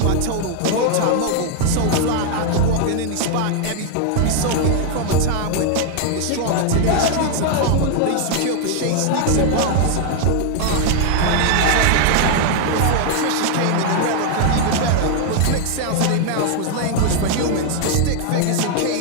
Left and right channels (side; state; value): both; different; correlation 0.00